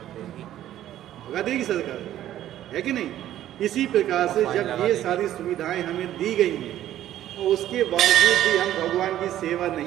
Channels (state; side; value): quieter; left; 12.5 dB